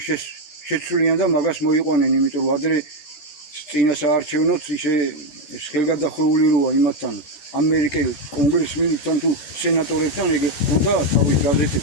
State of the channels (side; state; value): right; late; 13 ms